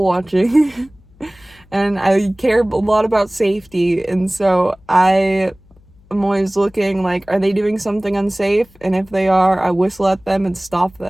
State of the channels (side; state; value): left; noise; hum, 28 dB below the sound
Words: watching. And I care a lot about safety, and so I'm always looking like, are they doing something unsafe? And if they are, I whistle at them and stop